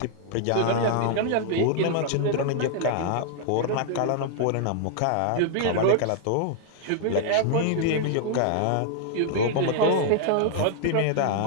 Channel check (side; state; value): both; different; correlation 0.00